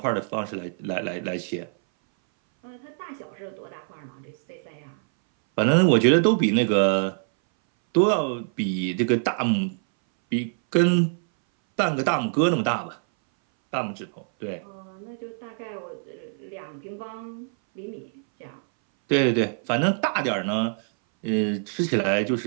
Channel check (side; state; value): left; silent; 60 dB below the other